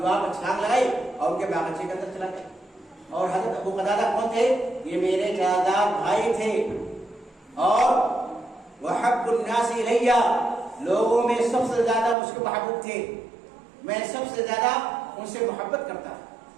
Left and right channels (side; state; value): left; drops out; at 12.2 s